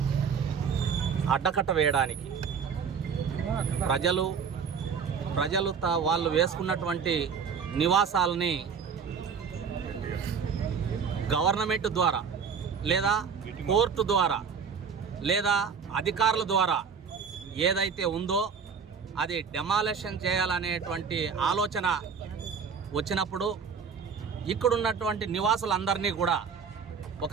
అడ్డకట్ట వేయడానికి ప్రజలు వాళ్ళు వేసుకున్నటువంటి నివాసాలని గవర్నమెంట్ ద్వారా లేదా కోర్టు ద్వారా లేదా అధికారుల ద్వారా ఏదైతే ఉందో అది డెమాలిషన్ చేయాలనేటువంటి ఆలోచన వచ్చినప్పుడు ఇక్కడున్నటువంటి నివాసులందరినీ కూడా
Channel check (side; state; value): left; quieter; 6.3 dB